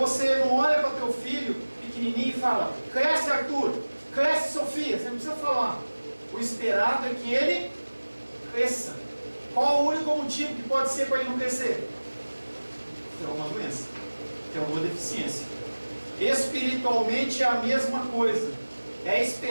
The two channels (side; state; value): both; inverted; correlation -1.00